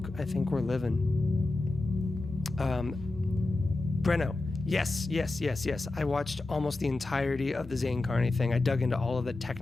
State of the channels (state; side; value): quieter; right; 3.1 dB